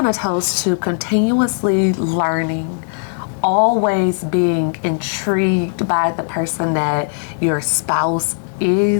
to toast to continuously learning, always being intrigued by the person that your spouse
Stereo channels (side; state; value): right; silent; 67 dB below the other